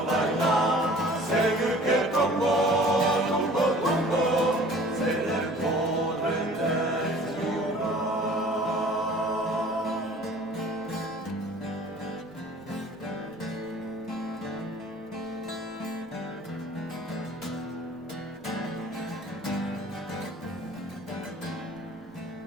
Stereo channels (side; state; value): both; normal; correlation 0.48